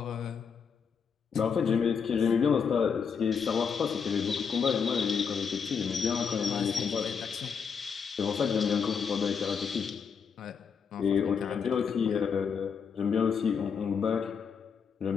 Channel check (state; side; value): quieter; right; 6.4 dB